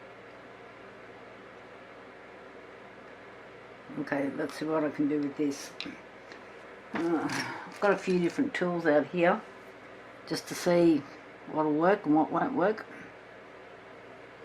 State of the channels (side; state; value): both; identical; correlation 1.00